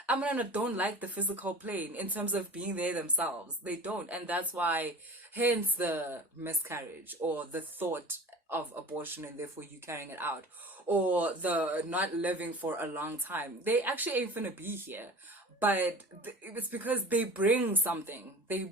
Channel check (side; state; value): both; normal; correlation 0.38